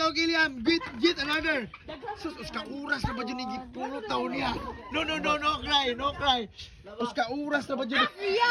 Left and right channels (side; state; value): both; identical; correlation 1.00